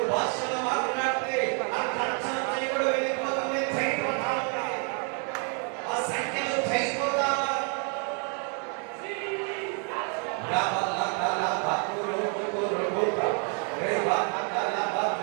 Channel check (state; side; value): quieter; left; 39.5 dB